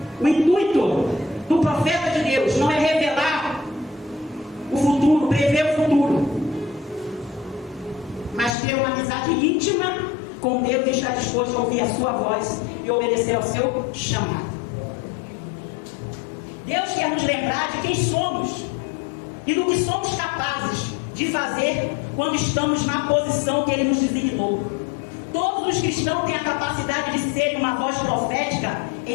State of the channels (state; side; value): drops out; right; at 8.6 s